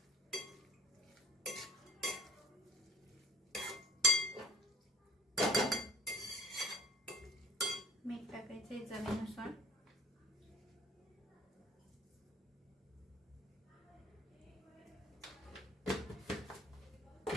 मीठ टाकायचंय चवीनुसार।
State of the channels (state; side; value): normal; both; correlation 0.48